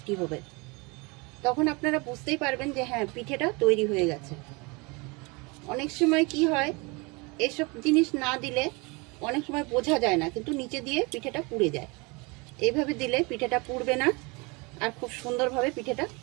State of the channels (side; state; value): left; quieter; 27.8 dB